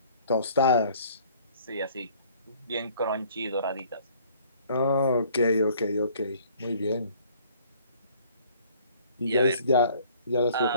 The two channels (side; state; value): both; inverted; correlation -0.56